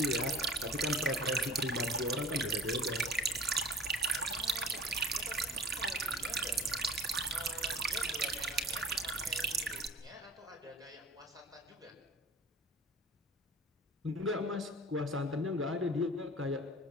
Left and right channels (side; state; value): both; normal; correlation 0.43